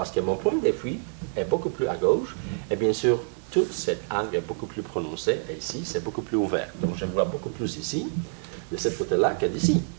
que mon point de fuite est beaucoup plus à gauche, et bien sûr, tout cet angle est beaucoup plus prononcé, et ici, c'est beaucoup plus ouvert. Donc, je vois beaucoup plus ici, de ce côté-là, que d'ici.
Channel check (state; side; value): silent; left; 60 dB below the other